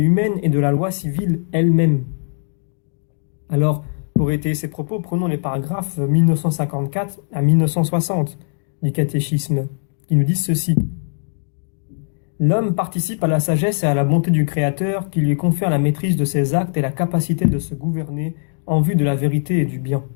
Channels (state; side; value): silent; right; digital silence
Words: et de la loi civile elle-même. Alors, pour étayer ces propos, prenons les paragraphes 1954 à 1960 du catéchisme, qui nous disent ceci. L'homme participe à la sagesse et à la bonté du Créateur qui lui confère la maîtrise de ses actes et la capacité de se gouverner en vue de la vérité et du bien.